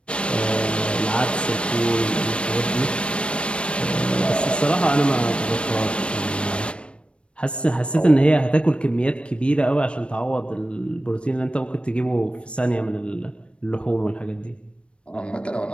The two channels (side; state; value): right; late; 0.058 ms